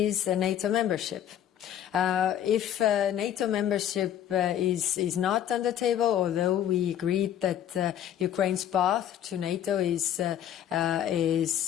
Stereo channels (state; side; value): quieter; right; 10.5 dB